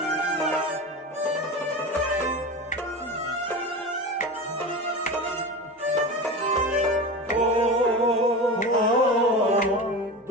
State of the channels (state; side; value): normal; both; correlation 0.27